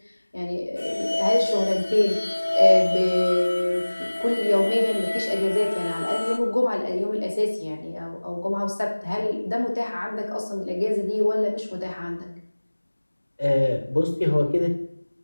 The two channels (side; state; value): both; inverted; correlation -1.00